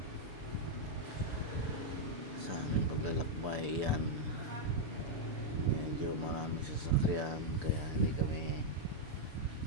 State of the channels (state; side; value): late; left; 6.9 ms